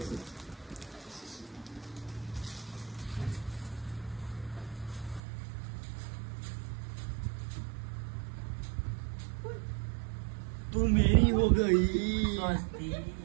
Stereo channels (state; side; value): drops out; left; at 5.2 s